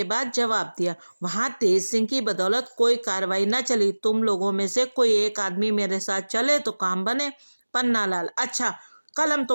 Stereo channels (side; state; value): both; inverted; correlation -1.00